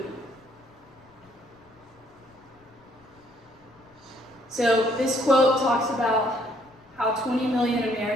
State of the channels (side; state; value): left; noise; rumble, 30 dB below the sound